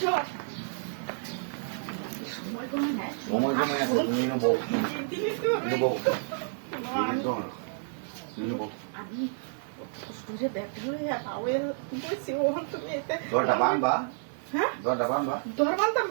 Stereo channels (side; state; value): left; silent; 58 dB below the other